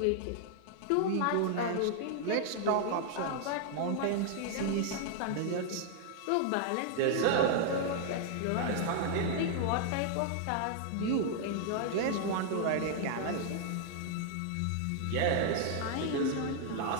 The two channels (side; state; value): both; different; correlation 0.00